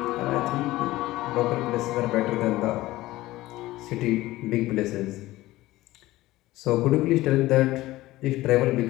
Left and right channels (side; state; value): right; quieter; 17.4 dB